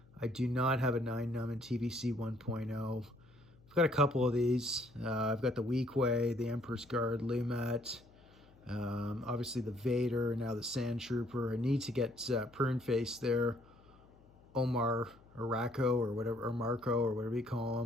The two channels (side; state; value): left; noise; hum, 26 dB below the sound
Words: I do not have a 9-num in TVC 1.0. I've got a couple of these. I've got the Weequay, the Emperor's Guard, Lumet, obviously the Vader, and now the SANDTROOPER. I need to get Prune Face there, Omar Araco or whatever, or Marco or whatever you call